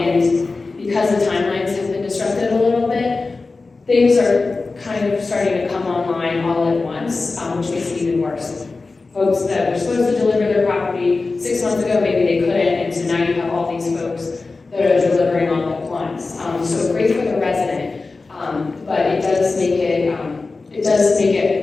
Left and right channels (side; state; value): right; quieter; 3.8 dB